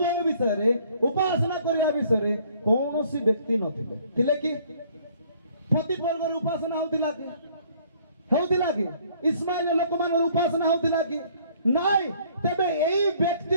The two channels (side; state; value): both; inverted; correlation -0.60